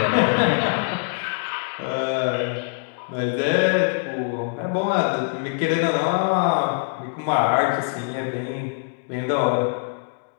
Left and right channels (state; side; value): silent; right; digital silence